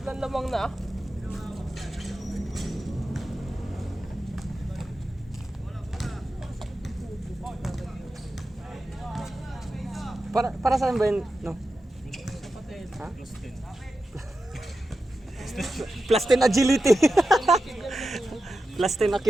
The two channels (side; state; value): both; normal; correlation 0.91